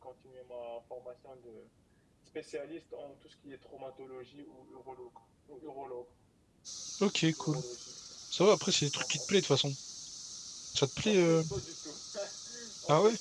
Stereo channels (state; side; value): identical; both; correlation 1.00